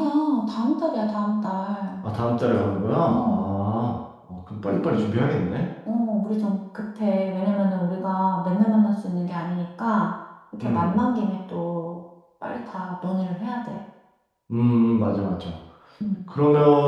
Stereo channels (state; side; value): identical; both; correlation 1.00